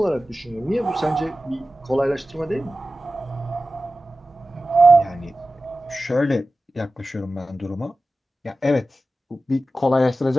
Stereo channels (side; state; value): both; normal; correlation 0.94